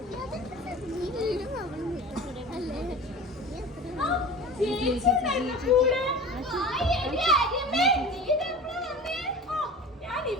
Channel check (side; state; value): both; normal; correlation 0.37